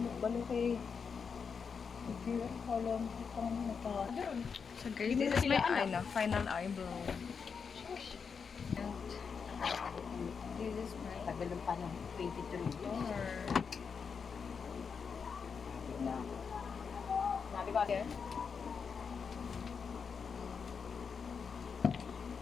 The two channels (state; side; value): quieter; right; 6.0 dB